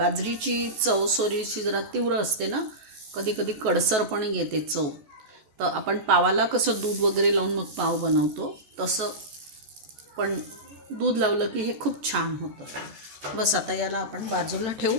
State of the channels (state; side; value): late; left; 14 ms